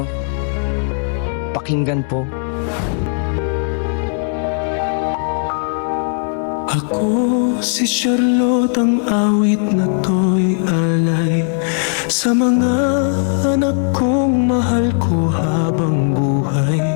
Pakinggan po. Ako si Charlotte, ang awit na to'y alay sa mga anak kong mahal ko habang buhay.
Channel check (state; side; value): silent; right; 58 dB below the other